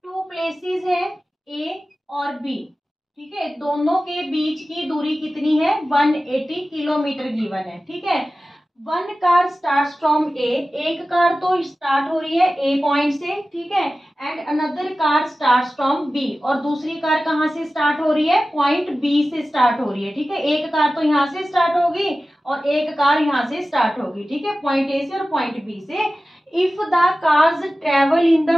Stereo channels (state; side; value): normal; both; correlation 0.95